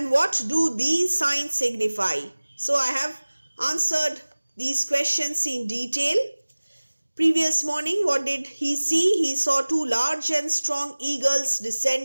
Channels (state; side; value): inverted; both; correlation -1.00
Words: what do these signs signify? So I have answered these questions in detail. Previous morning, what did he see? He saw two large and strong eagles